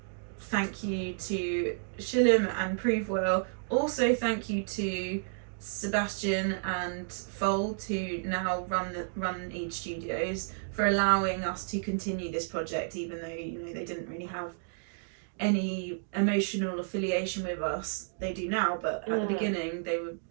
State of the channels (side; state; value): left; silent; digital silence